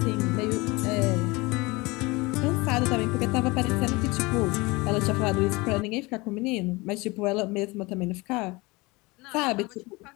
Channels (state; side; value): quieter; right; 24.0 dB